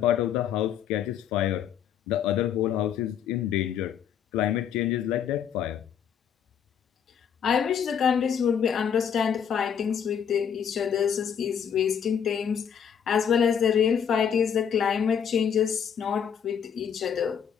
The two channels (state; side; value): quieter; right; 8.1 dB